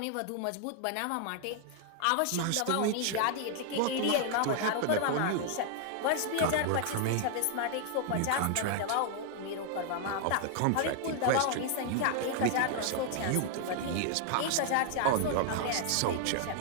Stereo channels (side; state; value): both; different; correlation 0.00